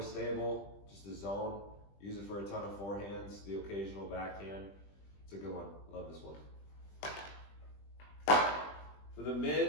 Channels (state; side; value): late; right; 20 ms